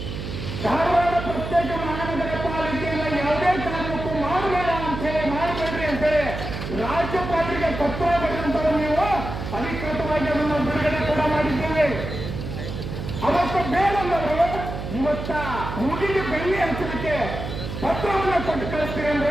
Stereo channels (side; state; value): right; noise; hum, 6 dB below the sound